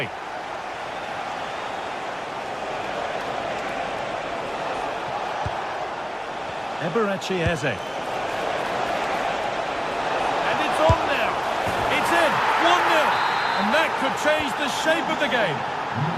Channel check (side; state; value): both; identical; correlation 1.00